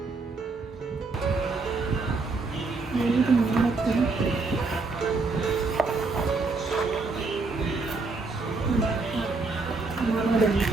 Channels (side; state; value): left; quieter; 3.8 dB